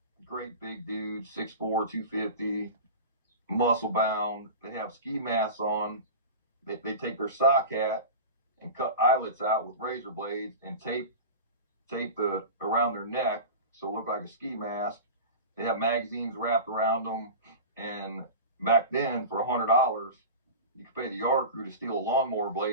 great big dudes, 6'4", 250, muscle bound. They have ski masks on. They take their sock hat and cut eyelets out with razor blades and tape the around their neck so it looked like a ski mask. They have magazines wrapped around them, and back then for $100 you could pay the yard crew to steal a lawnmower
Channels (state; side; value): inverted; both; correlation -0.30